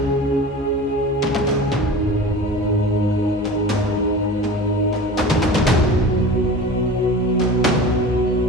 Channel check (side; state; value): both; normal; correlation 0.36